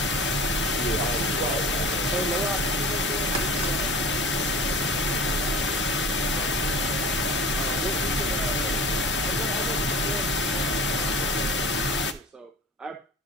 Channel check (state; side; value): normal; both; correlation 0.39